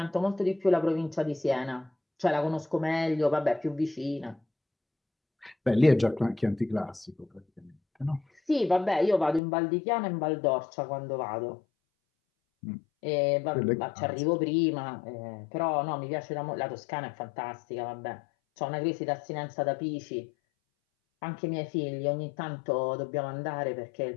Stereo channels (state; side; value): drops out; right; at 9.4 s